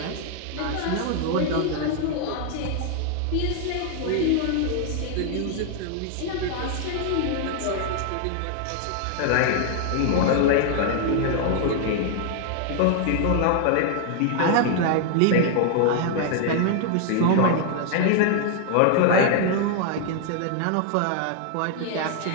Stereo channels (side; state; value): both; different; correlation 0.00